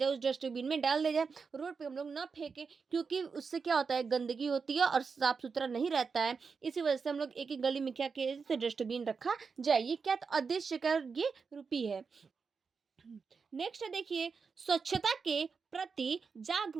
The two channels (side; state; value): left; quieter; 5.3 dB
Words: उस डस्टबिन में डाल दिया जाए, रोड पे हम लोग ना फेंके, क्योंकि उससे क्या होता है, गंदगी होती है और साफ सुथरा नहीं रहता है, इसी वजह से हम लोग एक एक गली में क्या किया जाए, डस्टबिन रखा जाए। ये क्या आदेश का ये रूपी है। नेक्स्ट देखिए स्वच्छता के प्रति